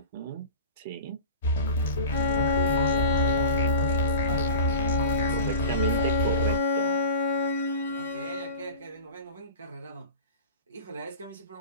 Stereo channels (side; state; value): both; inverted; correlation -0.34